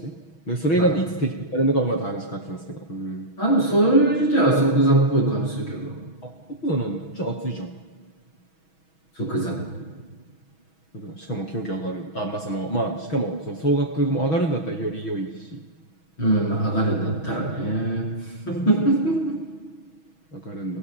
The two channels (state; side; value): late; right; 6.2 ms